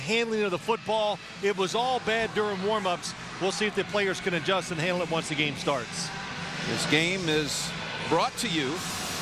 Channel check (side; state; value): both; identical; correlation 1.00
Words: of the football, it was all bad during warm-ups. We'll see if the players can adjust and handle it once the game starts. This game is brought to you